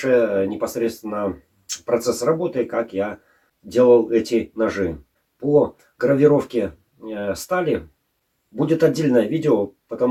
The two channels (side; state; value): both; identical; correlation 1.00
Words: непосредственно процесс работы, как я делал эти ножи. По гравировке стали будет отдельное видео,